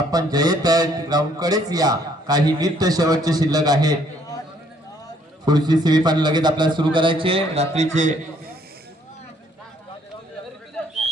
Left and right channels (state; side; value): normal; both; correlation 0.65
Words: जयत ग्राउंड कडेच या. काही मिनिट शेवटचे शिल्लक आहेत. पुढची सेमीफायनल लगेच आपल्याला सुरू करायचे. रात्रीचे